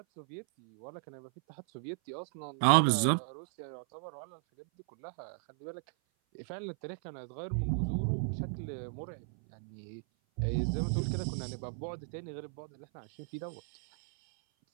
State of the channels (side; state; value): left; silent; 54 dB below the other